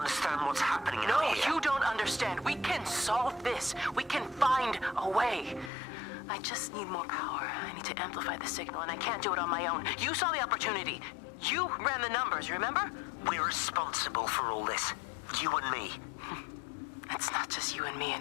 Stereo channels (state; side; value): drops out; right; at 5.7 s